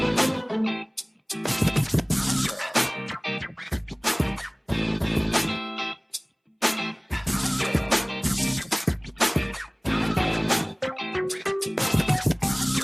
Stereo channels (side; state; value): both; identical; correlation 1.00